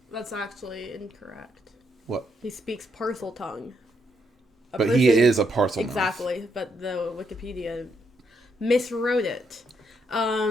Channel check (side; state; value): both; normal; correlation 0.77